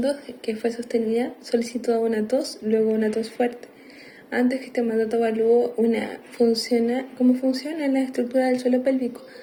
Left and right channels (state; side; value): identical; both; correlation 1.00